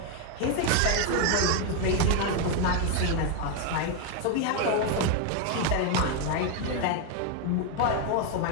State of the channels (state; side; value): different; both; correlation 0.01